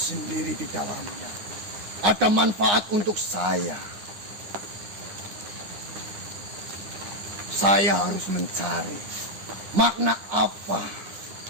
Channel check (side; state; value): left; late; 9.8 ms